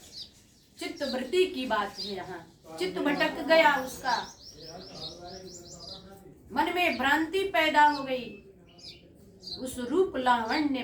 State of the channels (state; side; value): identical; both; correlation 1.00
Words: चित्तवृत्ति की बात है, यहाँ चित्त भटक गया, उसका मन में भ्रांति पैदा हो गई, उस रूप लावण्य